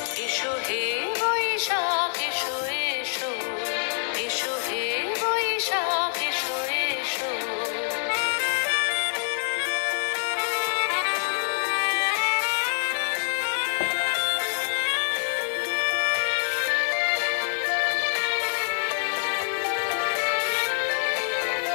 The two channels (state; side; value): silent; right; digital silence